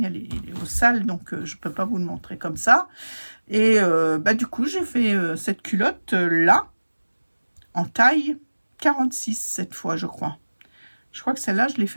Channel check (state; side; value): inverted; both; correlation -1.00